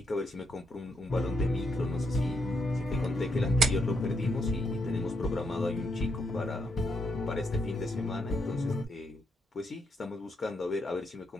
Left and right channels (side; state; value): both; normal; correlation 0.79